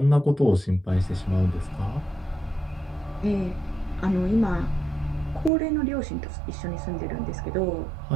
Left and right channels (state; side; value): drops out; left; at 5.5 s